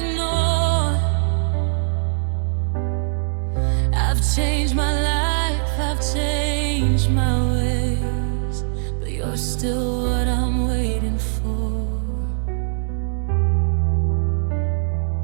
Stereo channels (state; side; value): silent; left; digital silence